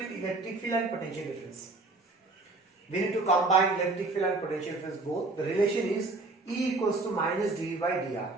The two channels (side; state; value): left; quieter; 3.3 dB